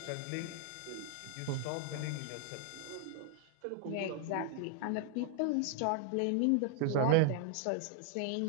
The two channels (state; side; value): different; both; correlation 0.00